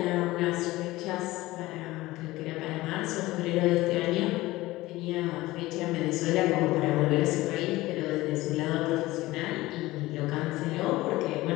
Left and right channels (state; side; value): quieter; right; 18.6 dB